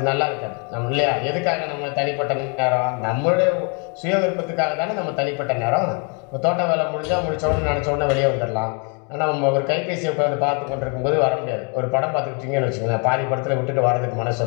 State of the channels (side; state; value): right; quieter; 36.2 dB